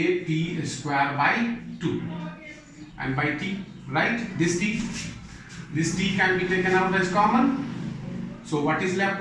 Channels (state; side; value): identical; both; correlation 1.00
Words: square by 2, and by T, right? This T can be taken out as common. So what is left